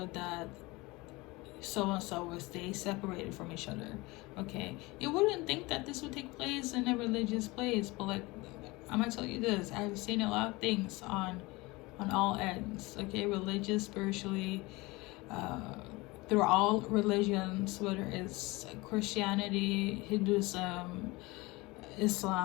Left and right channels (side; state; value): right; quieter; 22.9 dB